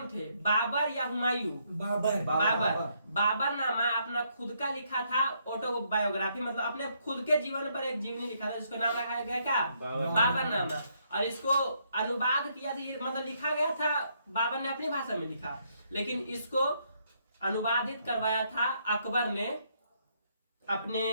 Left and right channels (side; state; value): both; inverted; correlation -0.73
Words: थे? बाबर या हुमायूं? बाबरनामा अपना खुद का लिखा था, ऑटोबायोग्राफी, मतलब अपने खुद के जीवन पर एक जीवनी लिखा था, जिसको नाम रखा गया क्या? बाबरनामा। और इसको अनुवाद किया था, मतलब लिखा गया था, बाबर ने अपनी भाषा में लिखा, लेकिन इसको अनुवादित करवाया था अकबर ने। अपने